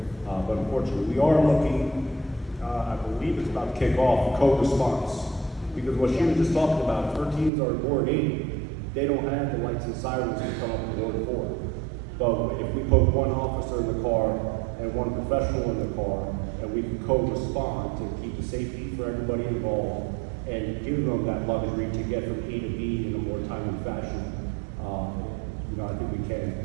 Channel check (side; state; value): left; drops out; at 7.5 s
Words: But unfortunately, we are looking, I believe it's about to kick off, code response. Because what she was just talking about, if her teams are in Ward 8, they don't have the lights and sirens to come up in Ward 4. But if we put one officer in the car and one professional in the car, and we can co-respond to keep the safety for everybody involved and give them that luxury to get from A to B in a more timely fashion, I think we